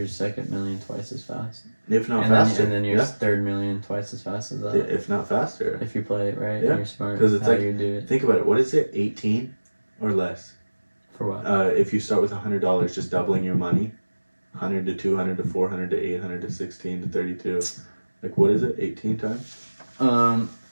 second million twice as fast. If not and faster. And then your third million twice as fast as that. If not faster. If you play it right, Yeah. and you're smart. Because it's how like, you do it. Think about it. What is it? 18 or less? For what? If you start with $100, just doubling your money, 100 to 200 to 400 to 800 to 16 to 32. Like, what is it? 18 times?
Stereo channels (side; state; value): both; inverted; correlation -1.00